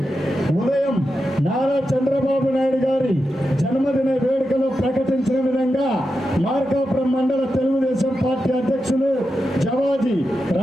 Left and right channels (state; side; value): normal; both; correlation 0.89